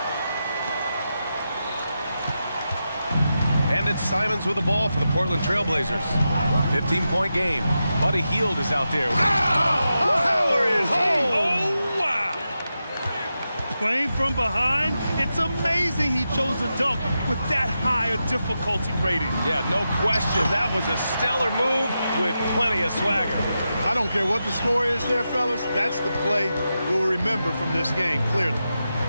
And it's Simons with the ball for the Portland Trailblazers. 15-point game. Buddy Hield is out there. Power it home! Oh, wow! Playing from behind, it's amazing he chose a dunk with that high a difficulty rating. Yeah, no question. That was a stellar move with plenty of swagger. I don't care what the score is there, fellas. That's the play we'll remember from this game, clearly.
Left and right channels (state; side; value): inverted; both; correlation -0.89